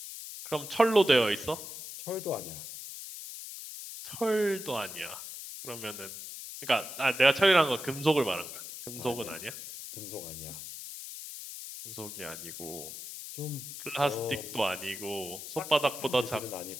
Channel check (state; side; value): noise; left; hiss, 10 dB below the sound